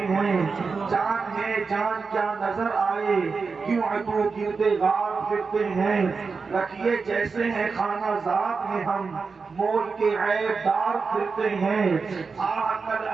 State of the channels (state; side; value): quieter; left; 4.8 dB